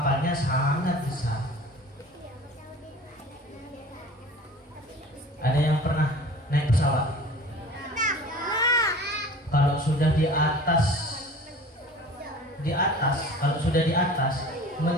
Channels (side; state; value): both; normal; correlation 0.43